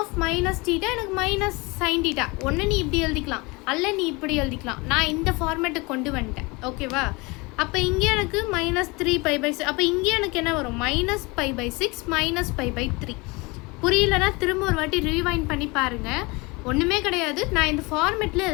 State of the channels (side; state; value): right; quieter; 25.8 dB